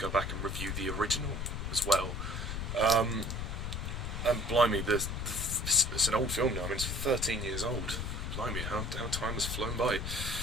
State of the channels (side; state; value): left; noise; rumble, 3 dB below the sound